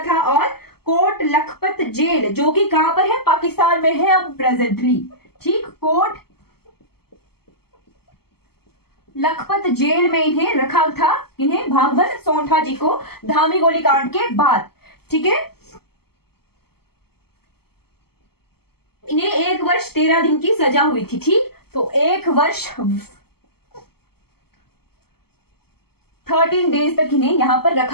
था और कोट लखपत जेल, जो कि कहां पर है, पाकिस्तान में है अब प्रेजेंटली, ठीक। कोट लखपत जेल में इन्हें रखा था, इन्हें भागमल सौठा जी को धामी गोलीकांड के बाद, ठीक है। इन्हें 1 वर्ष 13 दिन की सजा हुई थी, ठीक। तो 1 वर्ष 13 डेज तक इन्हें यहां पर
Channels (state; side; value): late; right; 0.96 ms